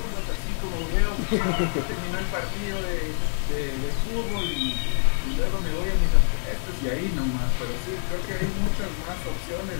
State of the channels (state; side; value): silent; right; digital silence